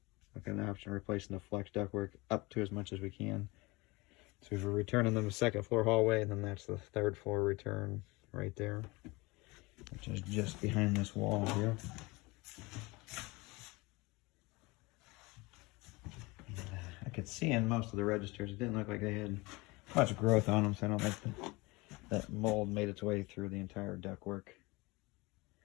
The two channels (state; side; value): quieter; right; 23.9 dB